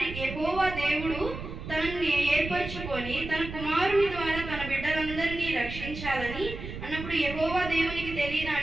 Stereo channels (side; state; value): right; noise; rumble, 9 dB below the sound